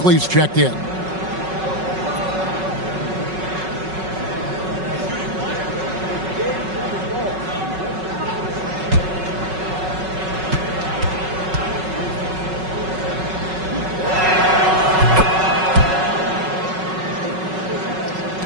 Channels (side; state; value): left; late; 5.4 ms